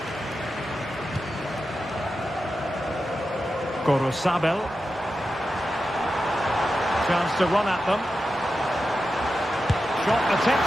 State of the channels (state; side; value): normal; both; correlation 0.90